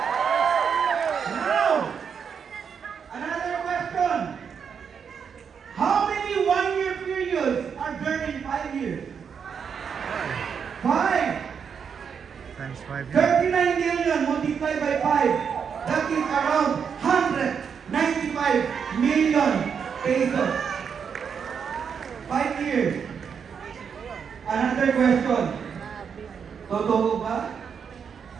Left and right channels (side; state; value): left; quieter; 6.8 dB